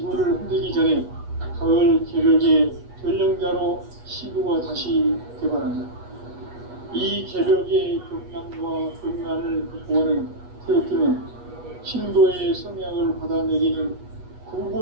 흔들기 전에 가을 개벽의 전령자로 시구가 다시 개발한다. 이 개벽의 경랑과 경란을 극복하는 태극기는 신도의 성향을 받아내리는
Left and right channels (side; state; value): left; late; 8.3 ms